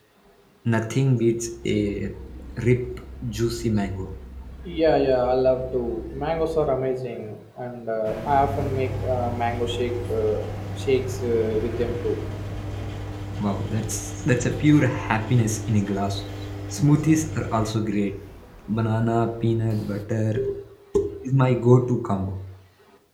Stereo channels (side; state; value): both; identical; correlation 1.00